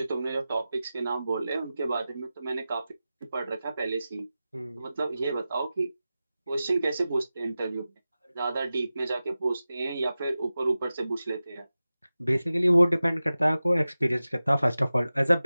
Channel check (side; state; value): both; inverted; correlation -0.95